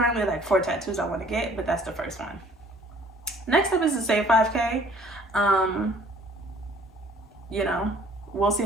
like 4 tattoos I want to get, but that's the first one. Next up is the Save 5K. You know, we'll see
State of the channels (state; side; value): normal; both; correlation 0.55